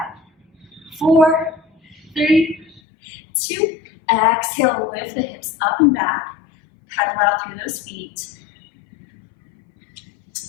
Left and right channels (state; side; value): drops out; right; at 2.8 s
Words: 4, 3, 2. Exhale, lift the hips up and back. Pedal out through those feet.